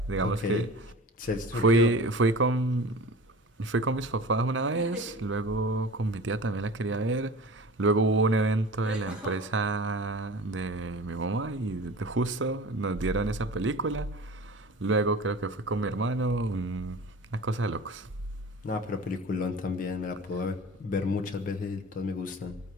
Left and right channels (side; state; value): both; normal; correlation 0.37